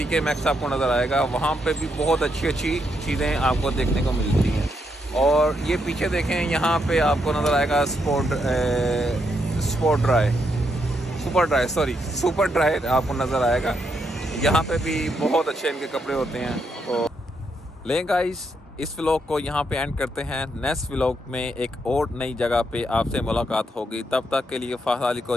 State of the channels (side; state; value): both; normal; correlation 0.78